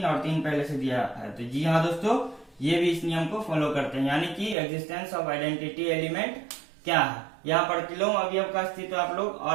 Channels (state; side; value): drops out; left; at 4.5 s